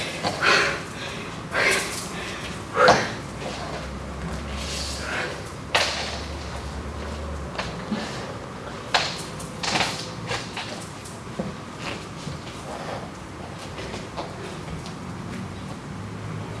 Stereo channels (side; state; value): both; identical; correlation 1.00